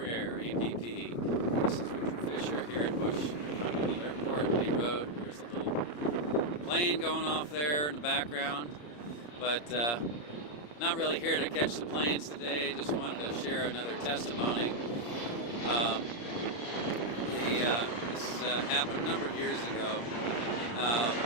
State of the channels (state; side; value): late; right; 34 ms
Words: APP. This is Richard Fisher here at Bush Continental Airport, Lee Road. There's a little plane going off there in the background, but not really here to catch the planes today. Just wanted to share another testimony. This happened a number of years ago,